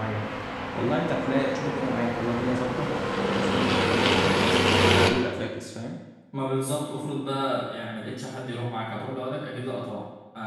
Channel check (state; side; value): identical; both; correlation 1.00